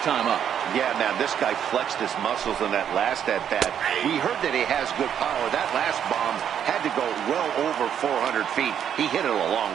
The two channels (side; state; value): left; quieter; 9.0 dB